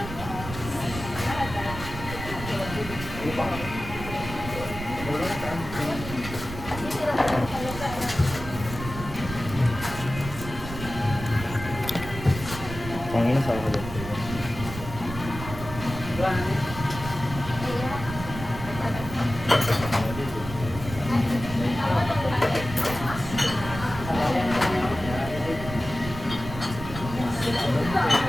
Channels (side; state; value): right; noise; rumble, 10 dB below the sound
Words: Pangina sa ako.